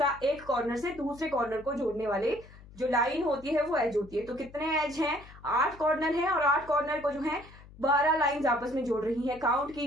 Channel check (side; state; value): left; noise; hum, 20 dB below the sound